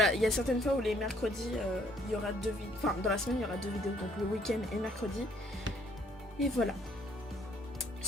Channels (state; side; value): normal; both; correlation 0.64